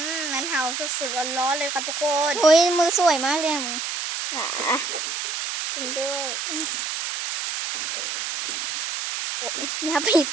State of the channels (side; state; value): right; noise; hiss, 3 dB below the sound